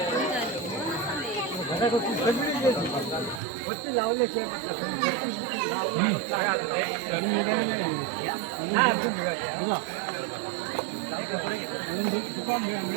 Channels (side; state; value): left; drops out; at 3.4 s